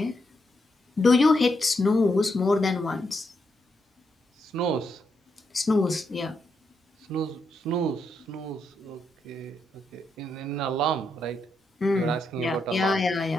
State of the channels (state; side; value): normal; both; correlation 0.81